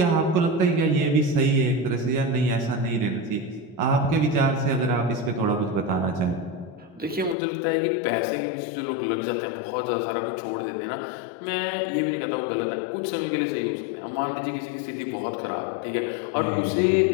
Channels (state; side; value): drops out; right; at 7.4 s